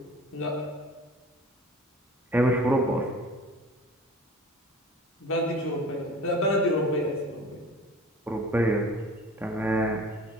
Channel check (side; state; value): both; normal; correlation 0.42